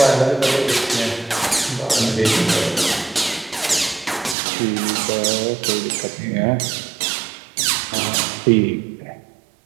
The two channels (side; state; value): left; drops out; at 4.4 s